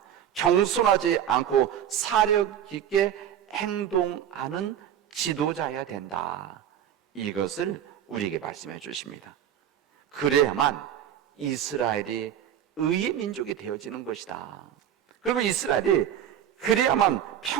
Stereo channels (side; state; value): left; quieter; 9.9 dB